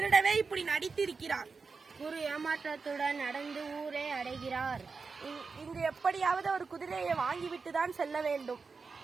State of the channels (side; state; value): left; quieter; 4.7 dB